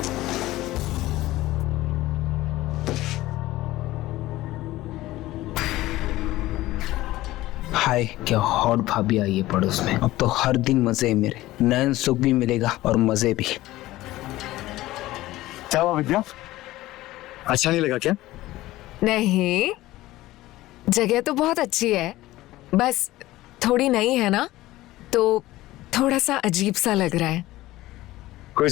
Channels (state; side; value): quieter; right; 16.9 dB